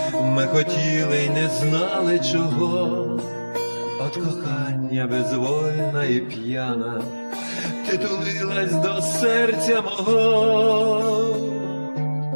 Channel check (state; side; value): inverted; both; correlation -1.00